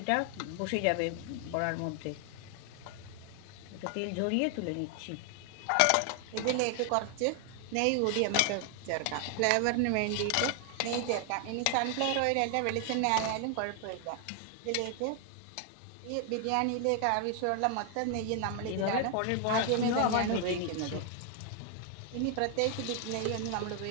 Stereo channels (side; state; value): both; different; correlation 0.00